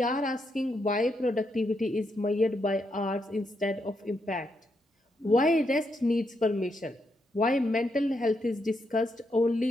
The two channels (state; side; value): normal; both; correlation 0.80